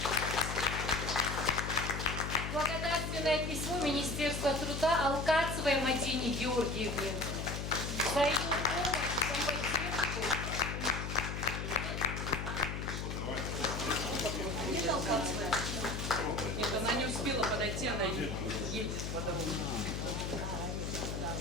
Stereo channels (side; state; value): left; noise; hum, 4 dB below the sound